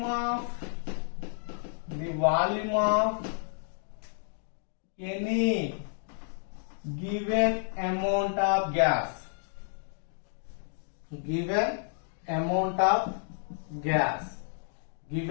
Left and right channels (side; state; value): right; silent; digital silence